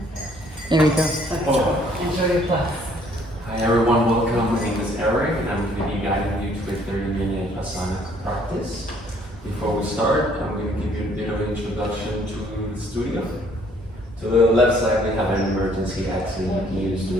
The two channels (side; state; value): both; normal; correlation 0.63